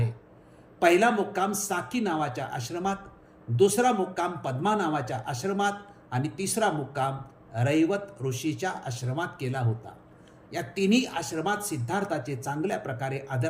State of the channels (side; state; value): both; identical; correlation 1.00